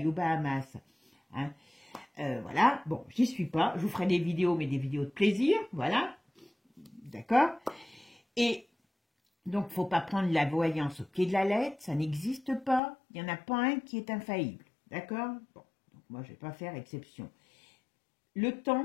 aux Bahamas. Hein. Voilà. Bon, j'y suis pas. Je vous ferai des vidéos, mais des vidéos de plaisir. Voilà. D'accord. Et donc, il ne faut pas prendre la voyance au pied de la lettre, ça n'existe pas. Il n'y en a pas un qui est infaillible. D'accord? Bon, donc moi, je ne vais pas faire exception. Le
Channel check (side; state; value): right; drops out; at 12.8 s